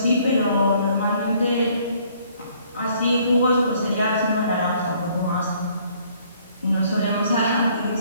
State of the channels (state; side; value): inverted; both; correlation -0.62